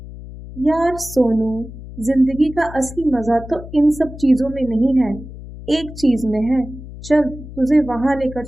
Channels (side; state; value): left; noise; hum, 14 dB below the sound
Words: यार सोनू, जिंदगी का असली मजा तो इन सब चीजों में नहीं है, एक चीज में है, चल तुझे वहां लेकर